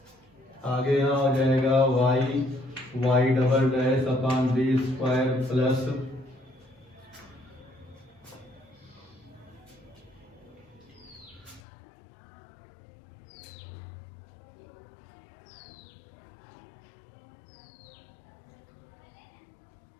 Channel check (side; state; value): right; drops out; at 11.6 s